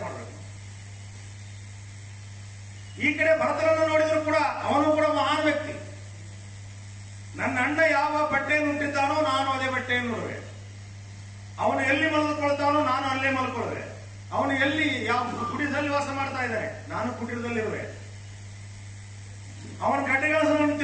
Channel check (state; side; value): identical; both; correlation 1.00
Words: ಮಾಡಬೇಕು. ಈ ಕಡೆ ಭರತನನ್ನು ನೋಡಿದ್ರು ಕೂಡ ಅವನು ಕೂಡ ಮಹಾನ್ ವ್ಯಕ್ತಿ. ನನ್ನ ಅಣ್ಣ ಯಾವ ಬಟ್ಟೆಯನ್ನು ಉಂಟಿದ್ದಾನೋ ನಾನು ಅದೇ ಬಟ್ಟೆಯನ್ನು ನೋಡುವೆ, ಅವನು ಎಲ್ಲಿ ಮಲಗಿಕೊಳ್ತಾನೋ ನಾನು ಅಲ್ಲೇ ಮಲ್ಕೊಳ್ಳುವೆ, ಅವನು ಎಲ್ಲಿ ಯಾವ ಕುಟೀರದಲ್ಲಿ ವಾಸ ಮಾಡ್ತಾ ಇದ್ದಾನೆ ನಾನು ಕುಟೀರದಲ್ಲಿರುವೆ, ಅವನ ಗಡ್ಡೆಗಳನ್ನು